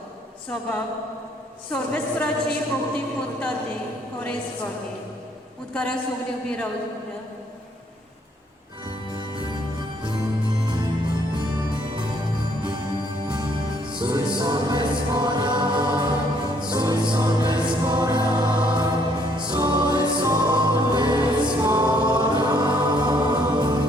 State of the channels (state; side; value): normal; both; correlation 0.66